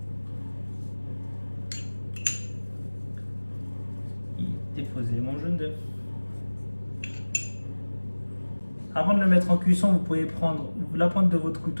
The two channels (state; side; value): inverted; both; correlation -1.00